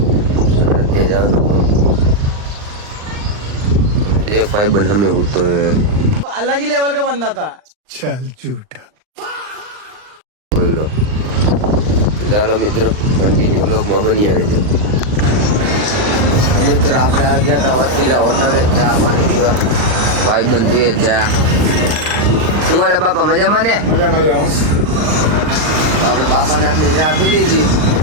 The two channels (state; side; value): late; left; 39 ms